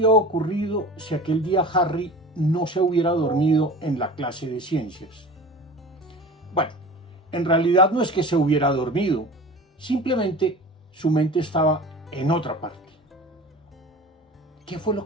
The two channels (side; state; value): both; normal; correlation 0.37